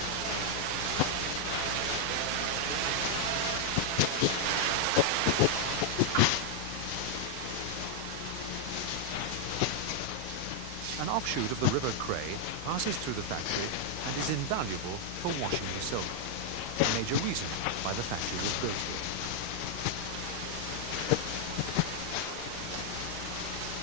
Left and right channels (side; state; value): both; different; correlation 0.00